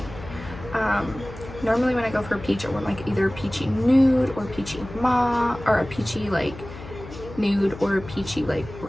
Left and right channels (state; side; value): noise; left; hum, 14 dB below the sound